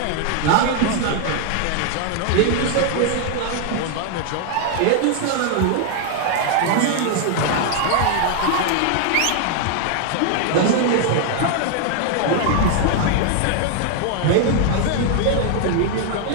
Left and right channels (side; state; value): both; different; correlation 0.00